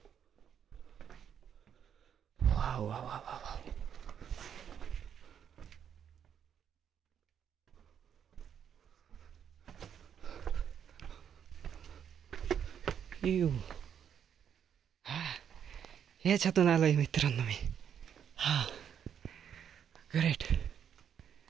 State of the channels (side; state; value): left; quieter; 8.5 dB